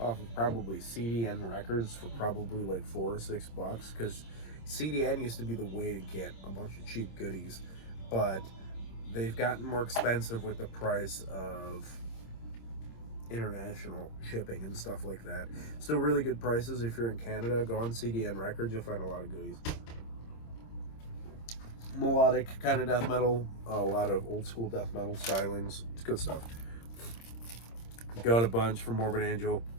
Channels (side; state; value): right; late; 26 ms